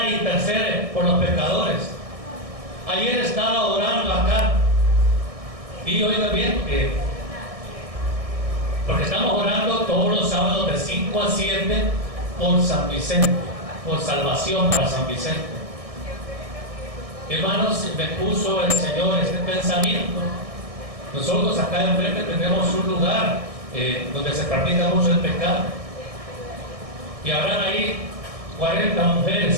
intercede por los pecadores. Ayer estaba orando acá y oiga bien, porque estamos orando todos los sábados de 5 a 7 por San Vicente, por salvación para San Vicente. Hermanos, me puso el Señor este pensamiento. Nosotros acá enfrente tenemos un lugar donde se practica mucho el pecado. Y habrán ahí 40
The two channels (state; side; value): late; left; 1.6 ms